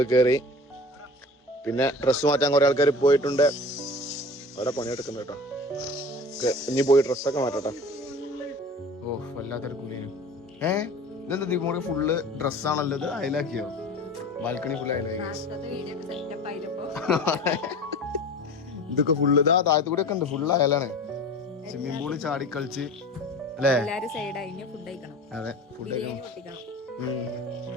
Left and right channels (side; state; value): both; normal; correlation 0.38